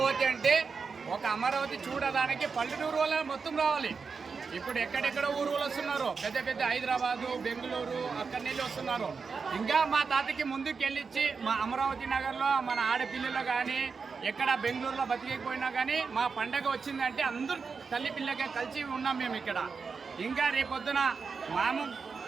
అంటే ఒక అమరావతి చూడడానికి పల్లెటూరు వాళ్ళ మొత్తం రావాలి. ఇప్పుడు ఎక్కడెక్కడ ఊరు వాళ్ళు వస్తున్నారు, పెద్ద పెద్ద హైదరాబాదు, బెంగళూరు అక్కడి నుంచి వస్తున్నారు. ఇంకా మా తాతకి ముందుకు వెళ్ళిచ్చి మా అమరావతి నగర్లో మన ఆడపిల్లలు కానీ ఎక్కడ బెంగళూరులో బతికేకపోయినా కానీ మా పండగ వచ్చిందంటే అందరూ తల్లి పిల్లగా కలిసి ఉన్నాం మేము ఇక్కడ. ఇంకా రేపొద్దున మాము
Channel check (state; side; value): quieter; left; 5.2 dB